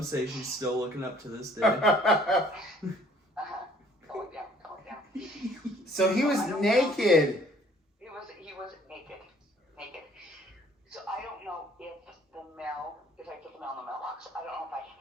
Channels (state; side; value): normal; both; correlation 0.58